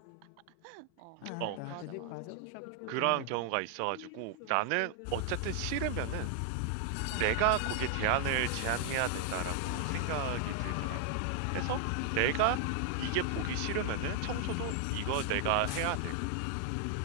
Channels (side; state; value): both; different; correlation 0.00